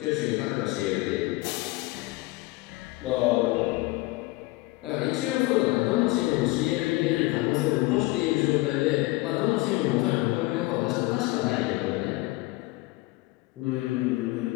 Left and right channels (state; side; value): quieter; right; 21.1 dB